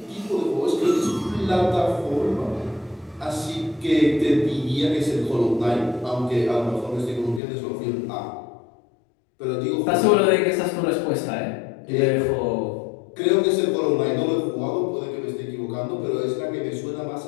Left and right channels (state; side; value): drops out; right; at 7.4 s